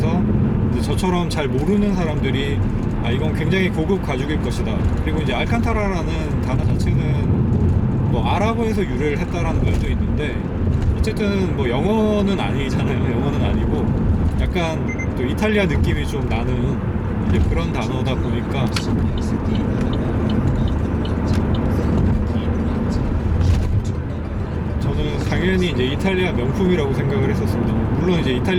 이제 저처럼 잘 모르는 사람들이 이건 굉장히 고급 가죽일 것이다, 그리고 이제 알칸타라라는 단어 자체는 뭐 아랍어에서 유래를 했다라는 말도 있는데, 어쨌든 뭐 영어는 아니잖아요. 영어는 아니고 약간 또 이탈리아 느낌이 좀 나는 이제 그런 단어다 보니까 당연히 이제 이탈리아 명품이라고 생각을 했었습니다. 물론 이제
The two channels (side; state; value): both; identical; correlation 1.00